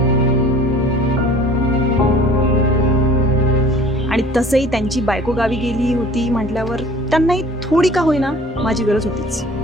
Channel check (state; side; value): normal; both; correlation 0.49